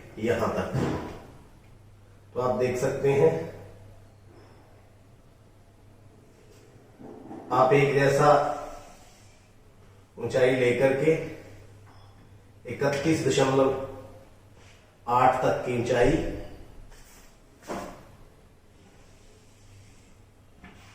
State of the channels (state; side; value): identical; both; correlation 1.00